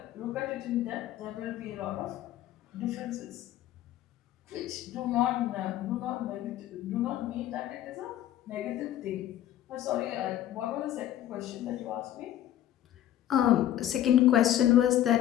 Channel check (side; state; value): right; quieter; 12.2 dB